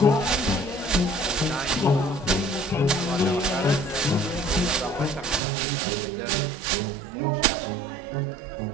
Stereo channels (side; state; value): left; drops out; at 5.4 s